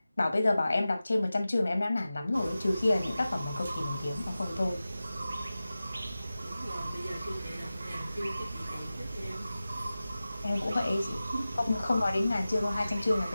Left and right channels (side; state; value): both; inverted; correlation -0.95